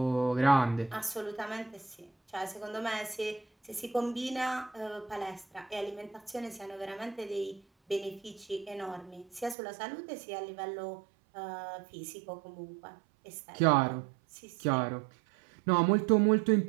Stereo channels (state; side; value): drops out; left; at 9.6 s